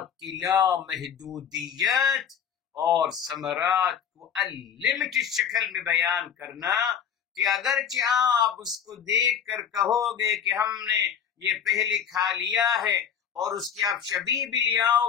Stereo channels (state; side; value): quieter; right; 8.1 dB